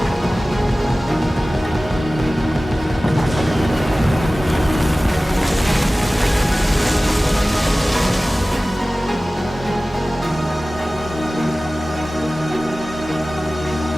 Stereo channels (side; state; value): both; normal; correlation 0.97